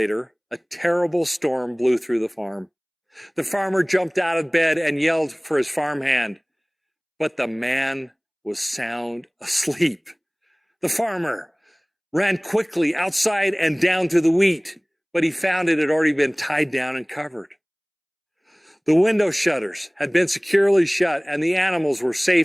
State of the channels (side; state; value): both; identical; correlation 1.00